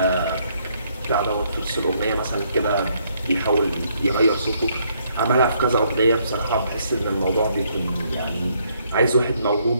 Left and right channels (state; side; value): inverted; both; correlation -0.70